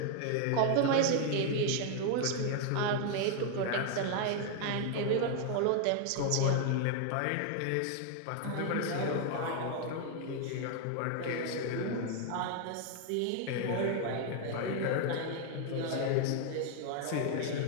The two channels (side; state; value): both; different; correlation 0.00